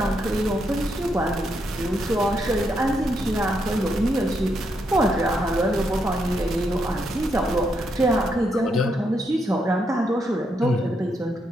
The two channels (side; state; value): both; normal; correlation 0.79